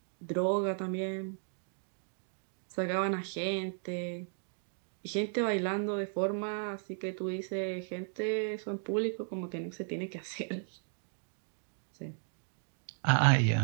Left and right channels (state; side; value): silent; left; digital silence